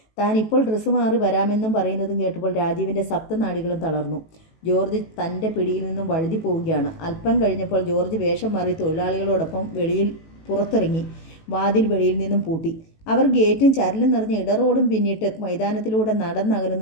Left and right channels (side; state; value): right; late; 19 ms